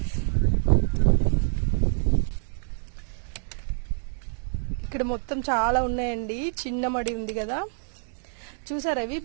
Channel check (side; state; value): left; silent; digital silence